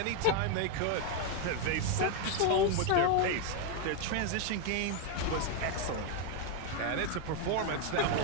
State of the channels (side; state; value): both; different; correlation 0.01